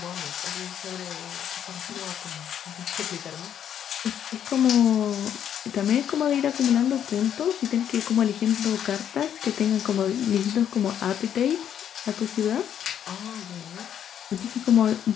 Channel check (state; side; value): quieter; right; 9.5 dB